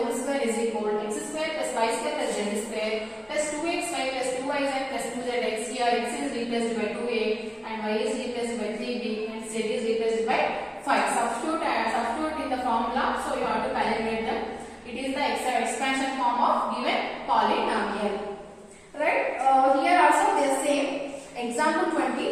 square is equal to x square plus y square plus z square plus 2xy plus 2yz plus 2zx. Here x is replaced by 2a and y is replaced by 3b and z is replaced by 5. Substitute in the formula, so you have to calculate them. It is the expansion form of given polynomial. Right? Here also they are same. Example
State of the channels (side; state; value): both; identical; correlation 1.00